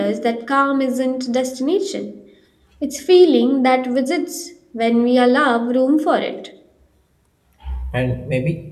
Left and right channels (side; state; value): both; identical; correlation 1.00